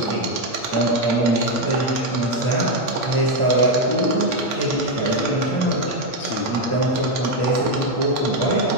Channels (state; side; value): late; right; 8.6 ms